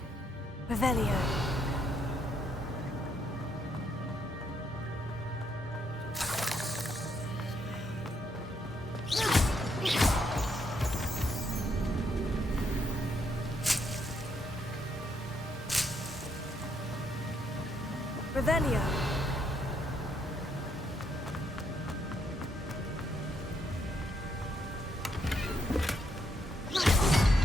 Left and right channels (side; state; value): both; normal; correlation 0.75